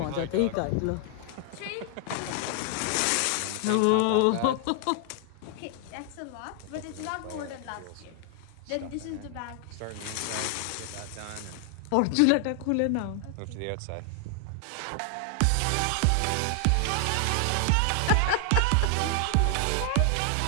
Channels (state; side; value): different; both; correlation 0.00